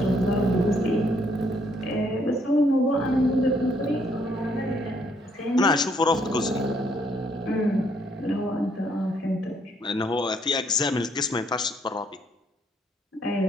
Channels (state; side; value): normal; both; correlation 0.69